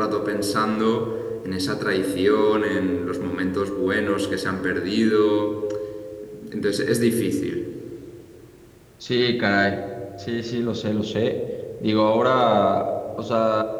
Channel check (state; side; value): identical; both; correlation 1.00